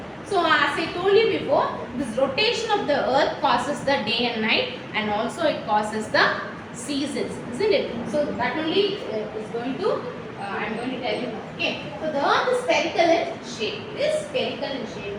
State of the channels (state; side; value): identical; both; correlation 1.00